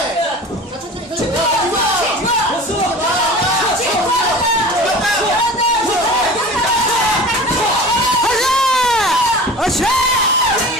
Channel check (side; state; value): both; normal; correlation 0.38